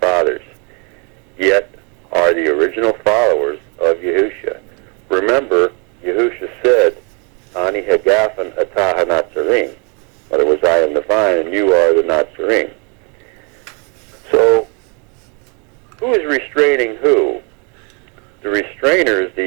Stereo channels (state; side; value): quieter; left; 34.1 dB